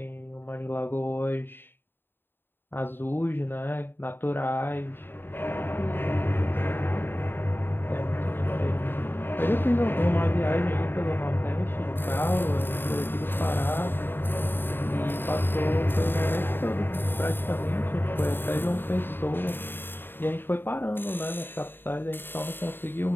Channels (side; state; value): right; late; 0.099 ms